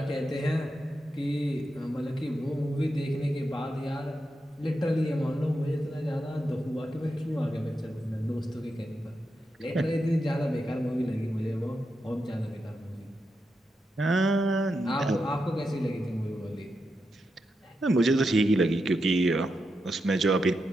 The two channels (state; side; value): normal; both; correlation 0.86